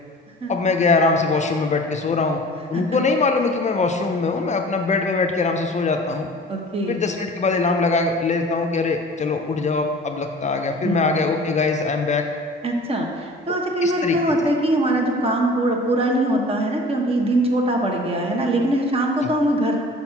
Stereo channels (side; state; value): both; normal; correlation 0.44